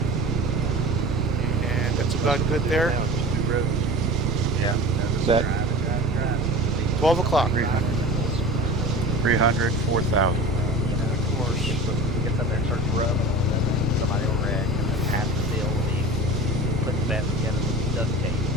And that's about good there. Now it's just 2 roads. Yeah. Set. Drive. 12 o'clock. 300. 300, 4,000. Of course. Gets up there and starts rubbing on it, and then somebody will wreck, and then half the deal will be putting that together with duct tape.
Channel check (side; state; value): both; normal; correlation 0.35